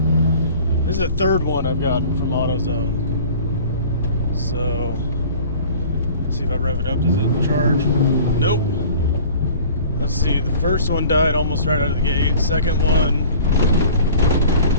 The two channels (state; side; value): inverted; both; correlation -0.46